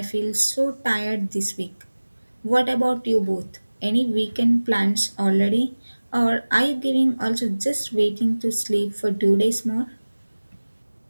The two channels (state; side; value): inverted; both; correlation -1.00